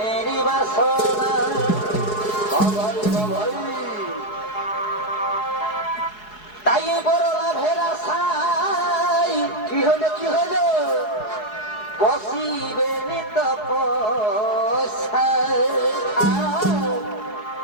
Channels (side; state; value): right; late; 4.7 ms